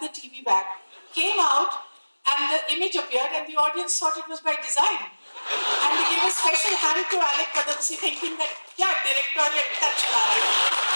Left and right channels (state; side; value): inverted; both; correlation -1.00